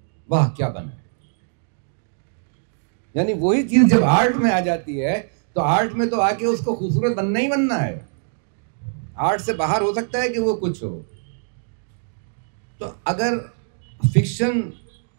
واہ کیا بنا ہے. یعنی وہی چیز جب آرٹ میں آ جاتی ہے تو آرٹ میں تو آ کے اس کو خوبصورت بننا ہی بننا ہے. آرٹ سے باہر ہو سکتا ہے کہ وہ کچھ ہو. تو اگر فکشن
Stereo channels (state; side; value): silent; left; digital silence